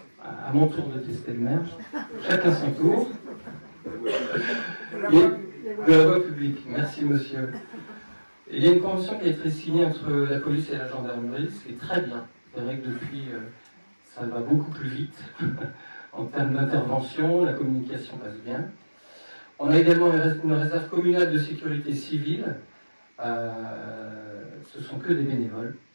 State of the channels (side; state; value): both; inverted; correlation -1.00